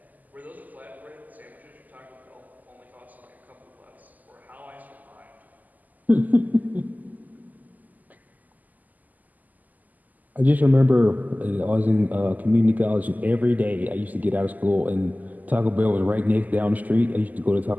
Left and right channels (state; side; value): late; left; 0.081 ms